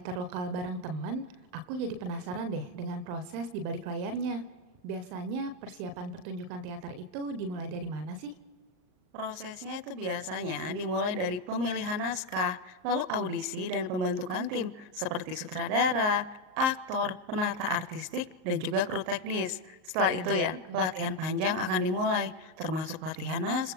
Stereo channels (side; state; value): left; late; 38 ms